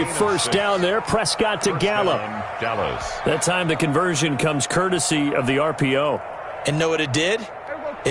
1st down there. Prescott to Gallup. That time the conversion comes courtesy of the RPO. And know what it did?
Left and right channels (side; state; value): both; identical; correlation 1.00